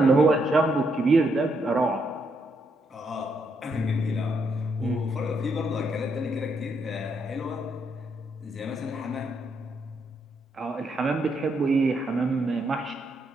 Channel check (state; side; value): normal; both; correlation 0.77